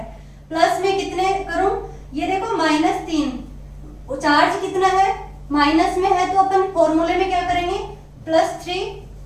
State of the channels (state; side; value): identical; both; correlation 1.00